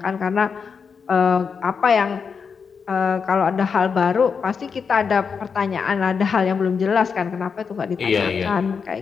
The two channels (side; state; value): right; quieter; 5.9 dB